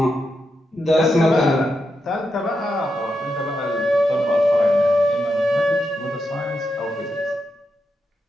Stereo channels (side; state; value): both; normal; correlation 0.85